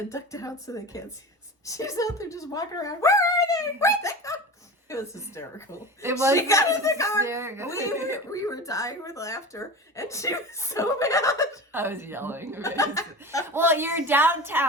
"Duck down so they can't see us." She's out there just walking around. Where are they? Where'd they go? It was hysterical. It was. She got in the car. We were dying with laughter, and she was so mad. I was yelling. Well, you're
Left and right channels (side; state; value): both; normal; correlation 0.31